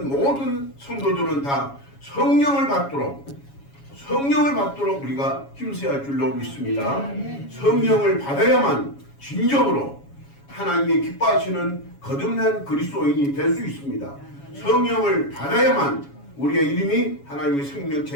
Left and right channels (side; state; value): right; late; 7.2 ms